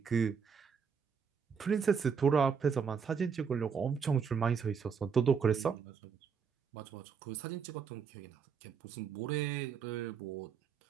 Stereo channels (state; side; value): quieter; left; 6.3 dB